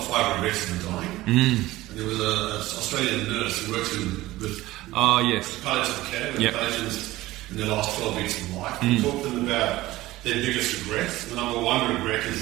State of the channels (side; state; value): left; quieter; 17.5 dB